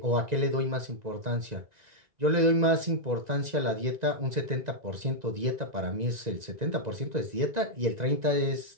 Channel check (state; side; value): late; left; 1.9 ms